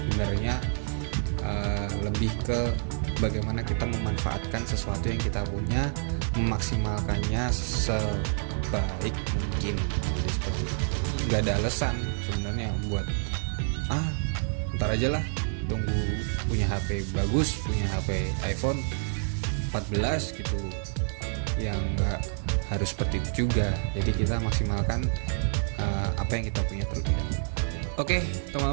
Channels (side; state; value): left; silent; digital silence